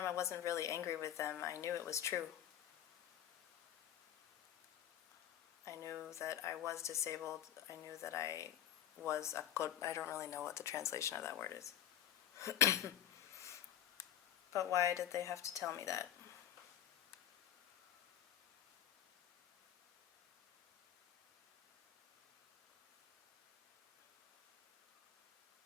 I wasn't really angry with them. I knew it was true. I knew that I was disabled. I knew that I was I don't really know what the translation of that word is. But why did they have to tell me that?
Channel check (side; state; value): right; quieter; 11.0 dB